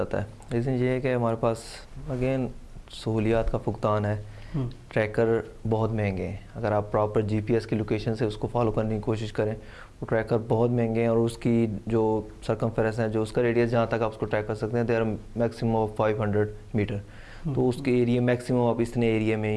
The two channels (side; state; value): both; identical; correlation 1.00